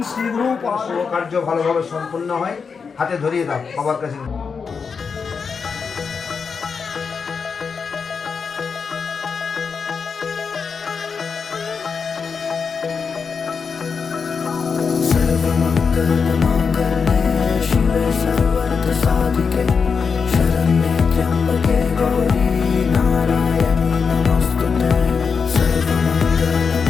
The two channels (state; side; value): quieter; right; 5.6 dB